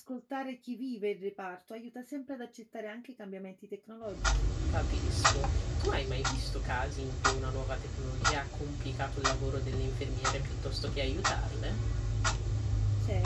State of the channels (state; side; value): identical; both; correlation 1.00